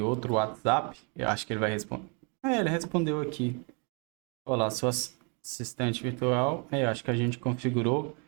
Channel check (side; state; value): left; quieter; 35.3 dB